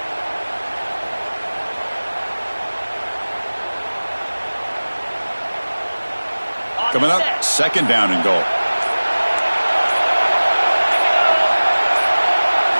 Coming up, 2nd down and goal.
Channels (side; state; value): both; inverted; correlation -1.00